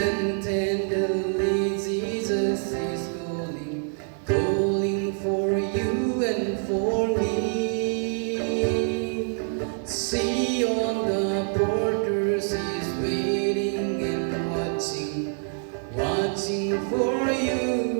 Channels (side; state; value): left; silent; 61 dB below the other